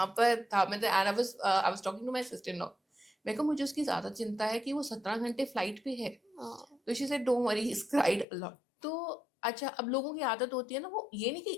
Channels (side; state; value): right; drops out; at 8.2 s